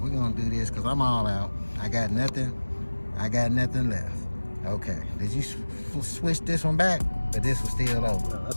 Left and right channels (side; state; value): both; inverted; correlation -1.00